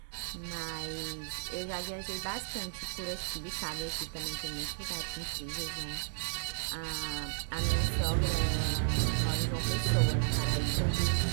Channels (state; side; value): silent; left; digital silence